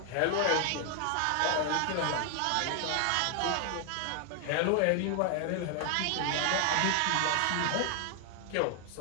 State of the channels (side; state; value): both; different; correlation 0.00